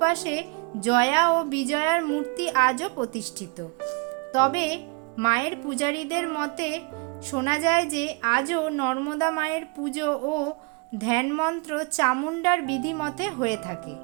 জয়া ও বিজয়ার মূর্তি আজও প্রতিষ্ঠিত। তবে মায়ের পূজারীদের মতে শোনা যায় যে আজও নর্মদা মায়ের পুজো ও ধ্যানমন্ত্র চামুণ্ডার বিধিমতে হয়ে থাকে।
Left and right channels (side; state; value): left; quieter; 31.4 dB